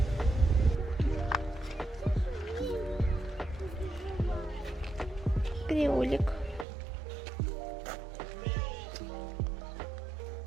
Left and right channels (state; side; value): drops out; left; at 6.7 s